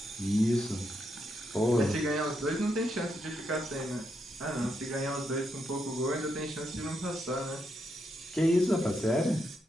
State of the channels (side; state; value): both; normal; correlation 0.80